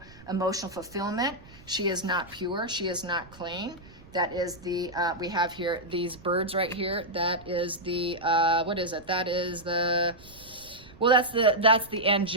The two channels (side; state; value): right; noise; rumble, 22 dB below the sound